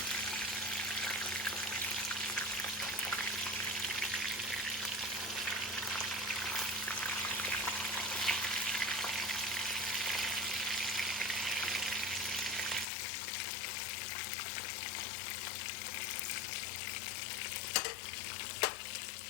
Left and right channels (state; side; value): drops out; right; at 12.9 s